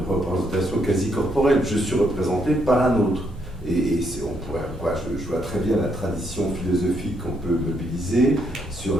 représentation quasi corporelle. Je suis représenté par un autre. Et je vois très bien la tradition philosophique qu'on peut mobiliser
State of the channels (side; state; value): both; normal; correlation 0.75